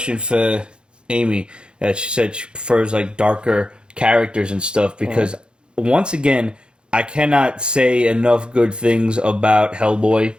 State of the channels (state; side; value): late; left; 0.052 ms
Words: for Amy. That she said she prefers, like, darker characters and stuff because, once again, I cannot say enough good things about Hellboy